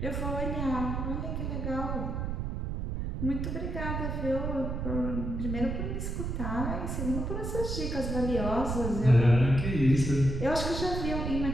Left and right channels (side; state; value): right; noise; rumble, 3 dB below the sound